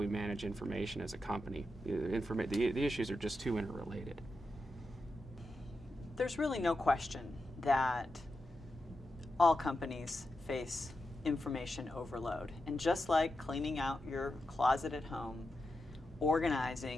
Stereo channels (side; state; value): both; normal; correlation 0.89